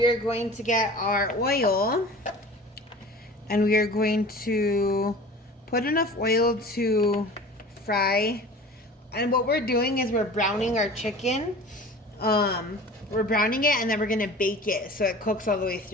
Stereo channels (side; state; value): both; normal; correlation 0.40